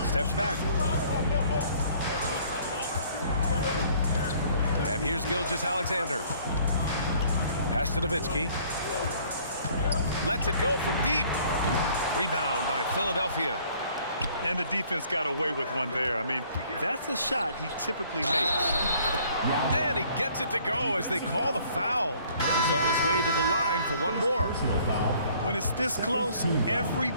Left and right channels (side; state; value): both; inverted; correlation -0.58